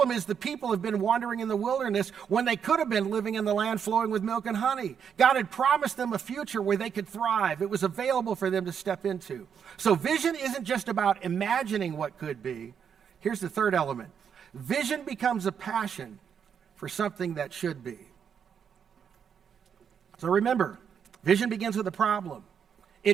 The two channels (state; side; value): quieter; left; 7.5 dB